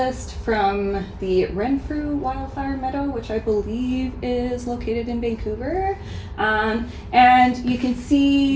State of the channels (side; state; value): both; identical; correlation 1.00